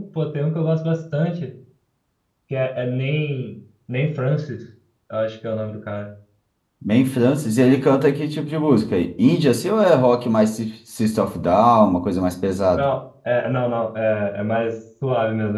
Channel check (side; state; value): both; identical; correlation 1.00